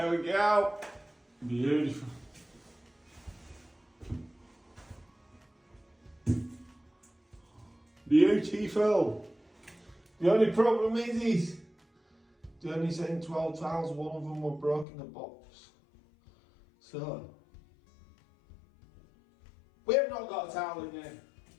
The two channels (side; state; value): right; drops out; at 14.9 s